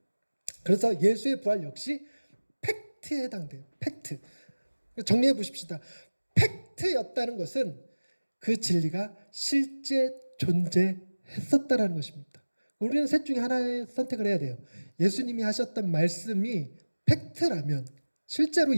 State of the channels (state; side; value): inverted; both; correlation -1.00